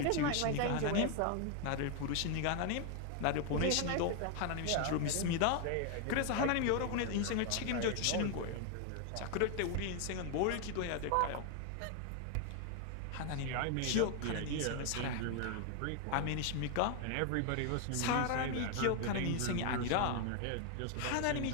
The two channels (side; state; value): both; different; correlation 0.00